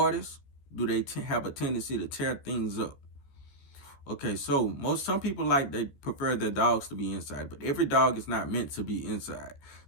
Do they have a tendency to tear things up? Okay, so some people they prefer their dogs to be inside, but every dog is not meant to be inside.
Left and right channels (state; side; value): late; right; 14 ms